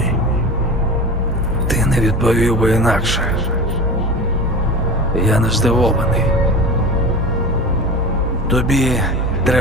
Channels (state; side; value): normal; both; correlation 0.31